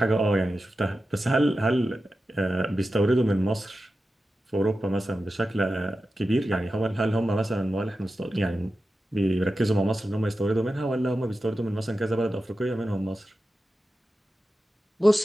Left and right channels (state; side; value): normal; both; correlation 0.92